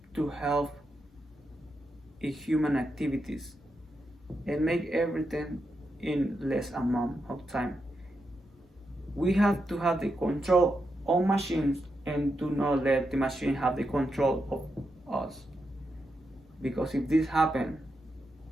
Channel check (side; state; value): both; normal; correlation 0.85